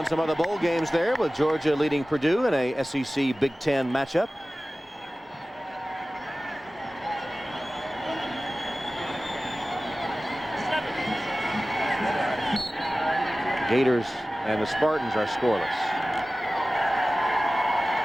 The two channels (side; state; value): both; normal; correlation 0.97